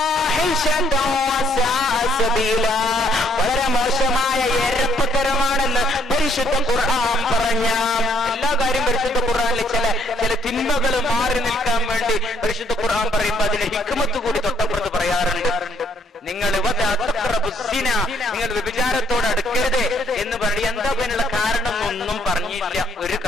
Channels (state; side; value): normal; both; correlation 0.67